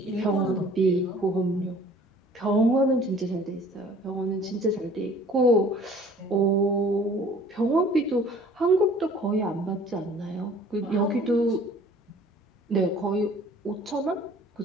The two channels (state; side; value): normal; both; correlation 0.51